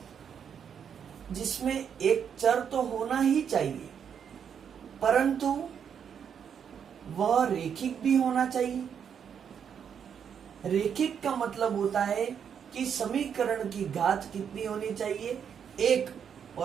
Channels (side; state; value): left; quieter; 7.7 dB